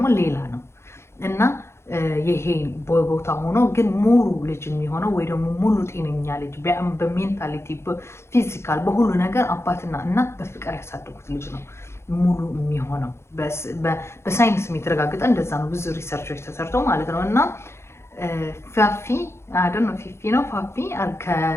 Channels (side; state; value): right; late; 0.13 ms